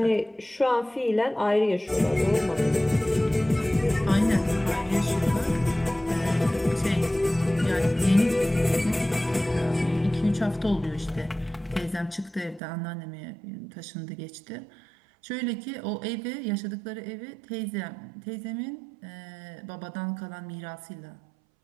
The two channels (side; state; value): left; drops out; at 12.6 s